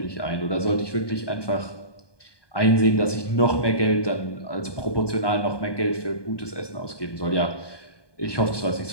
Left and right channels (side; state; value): right; late; 1.2 ms